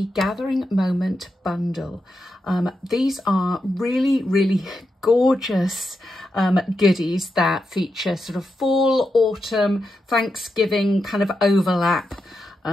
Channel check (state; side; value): normal; both; correlation 0.86